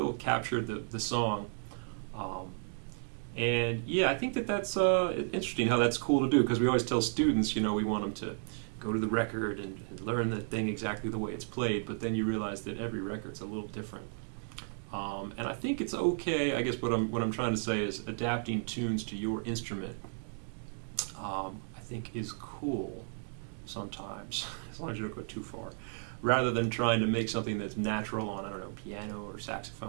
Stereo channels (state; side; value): silent; left; digital silence